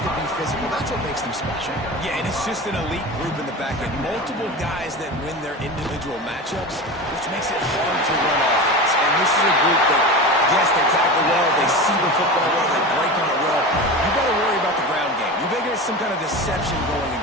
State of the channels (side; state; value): both; normal; correlation 0.28